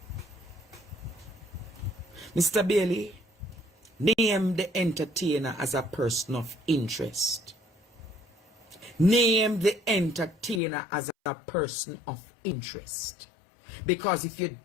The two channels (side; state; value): right; drops out; at 10.6 s